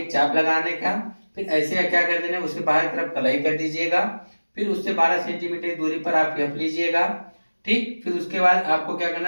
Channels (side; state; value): both; inverted; correlation -1.00